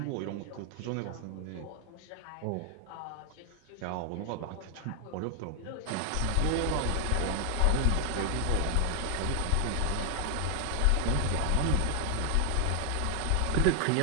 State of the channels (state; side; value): different; both; correlation 0.00